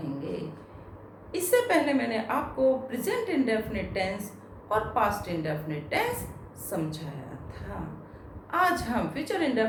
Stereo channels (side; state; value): both; identical; correlation 1.00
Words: इससे पहले मैंने आपको प्रेजेंट इंडेफिनिट टेंस और पास्ट इंडेफिनिट टेंस समझाया था। आज हम फ्यूचर